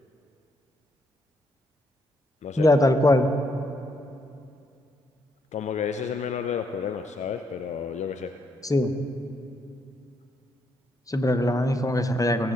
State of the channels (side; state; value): both; normal; correlation 0.75